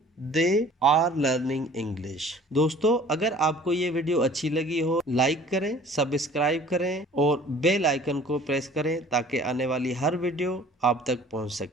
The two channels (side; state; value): both; normal; correlation 0.49